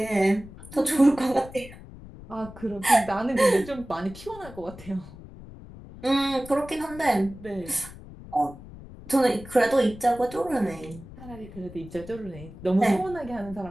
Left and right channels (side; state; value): left; noise; rumble, 16 dB below the sound